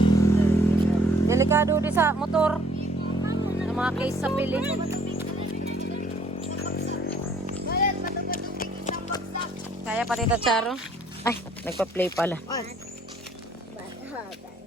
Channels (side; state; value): both; normal; correlation 0.60